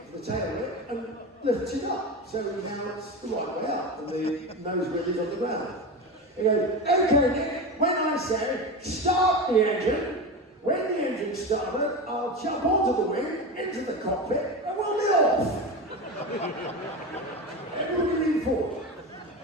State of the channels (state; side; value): normal; both; correlation 0.23